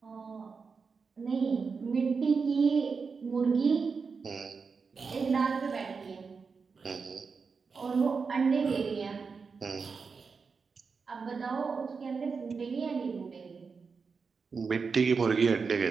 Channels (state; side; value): quieter; left; 5.1 dB